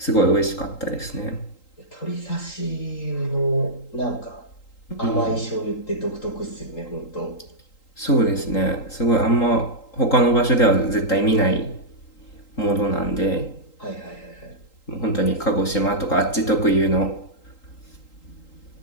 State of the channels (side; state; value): right; late; 3.8 ms